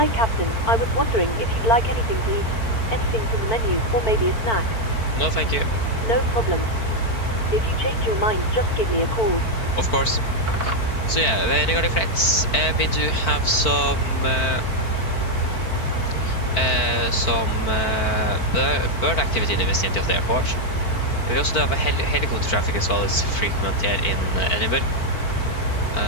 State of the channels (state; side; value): late; right; 4.5 ms